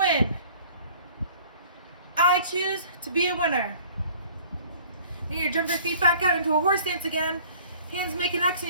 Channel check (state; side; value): inverted; both; correlation -0.50